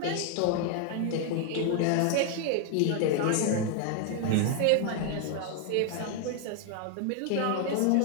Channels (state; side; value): different; both; correlation 0.00